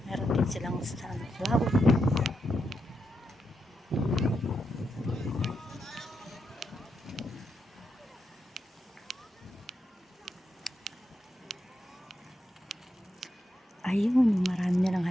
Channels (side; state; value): both; normal; correlation 0.84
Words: Meron din silang sunflower. Ayun, marami nilang